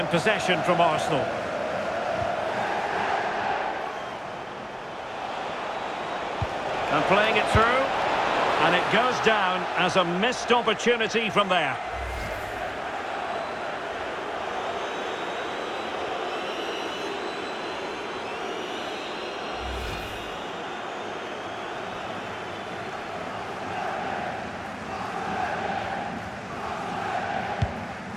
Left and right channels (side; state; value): both; identical; correlation 1.00